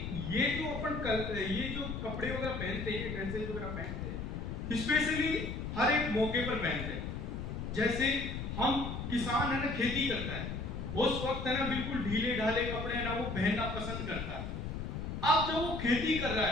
ये जो ये जो कपड़े वगैरह पहनते हैं, ड्रेसेस वगैरह पहनते हैं, स्पेशली हर एक मौके पर पहनते हैं। जैसे हम किसान है ना, खेती करता है, उस वक्त है ना बिल्कुल ढीले ढाले कपड़े है ना वो पहनना पसंद करता है। अब जब वो खेती कर रहा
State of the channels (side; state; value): left; noise; rumble, 5 dB below the sound